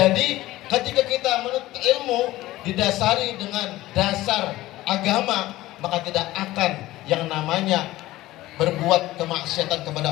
ketika kita menuntut ilmu didasari dengan dasar agama, maka tidak akan yang namanya berbuat kemaksiatan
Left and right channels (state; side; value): quieter; right; 16.9 dB